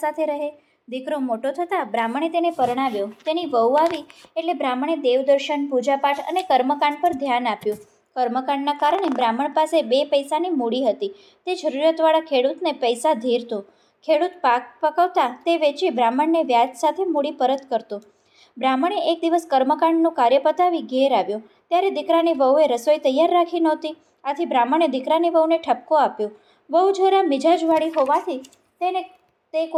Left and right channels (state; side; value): identical; both; correlation 1.00